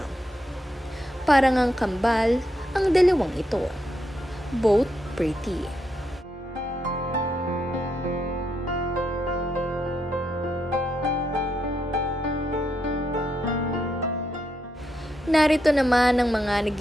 Parang ang kambal ang dalawang ito. Both pretty. Narito naman ang mga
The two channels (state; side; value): normal; both; correlation 0.80